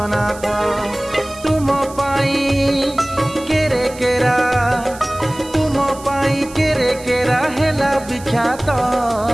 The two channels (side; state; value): right; noise; hiss, 18 dB below the sound